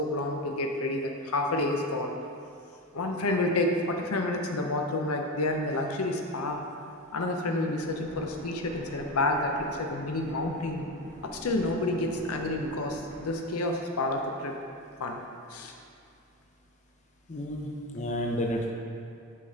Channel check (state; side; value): normal; both; correlation 0.18